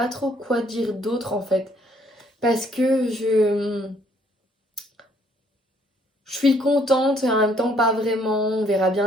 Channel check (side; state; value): both; normal; correlation 0.65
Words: trop quoi dire d'autre en fait. Parce que je suis contente et en même temps pas vraiment. On verra